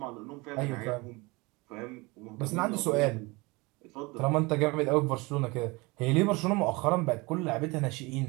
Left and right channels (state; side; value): quieter; left; 24.9 dB